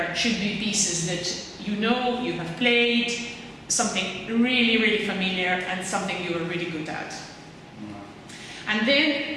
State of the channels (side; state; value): both; identical; correlation 1.00